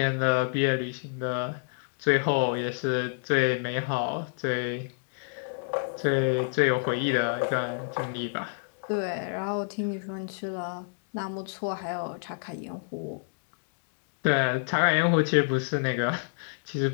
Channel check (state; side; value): silent; right; digital silence